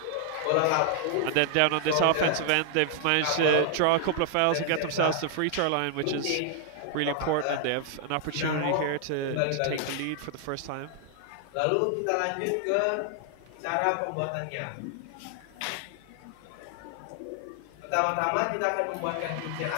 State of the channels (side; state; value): both; different; correlation 0.00